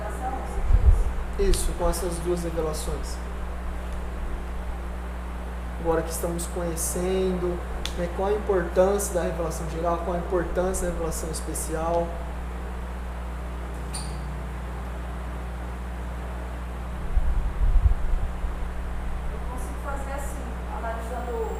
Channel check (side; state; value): both; identical; correlation 1.00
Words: Isso, com essas duas revelações. Agora que estamos conhecendo, né, qual a importância da revelação geral, qual a importância da revelação especial. Eu consigo fazer assim, analisando